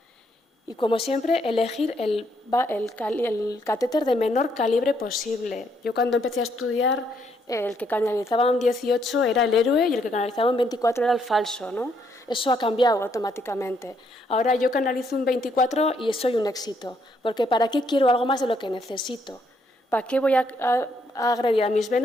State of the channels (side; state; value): both; normal; correlation 0.72